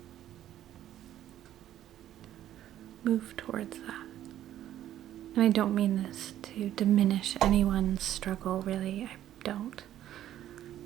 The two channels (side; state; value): left; quieter; 12.1 dB